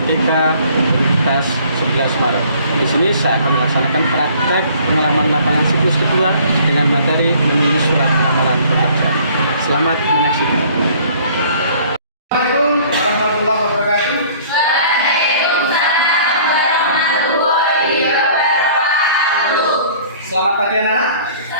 Universitas 11 Maret. Di sini saya akan melaksanakan praktek pengalaman lapangan siklus kedua dengan materi menulis surat lamaran pekerjaan. Selamat menyaksikan. Assalamualaikum warahmatullahi wabarakatuh. Selamat pagi anak-anak.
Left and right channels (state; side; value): inverted; both; correlation -0.53